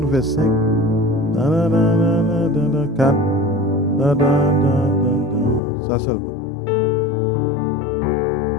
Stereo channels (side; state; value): right; drops out; at 5.6 s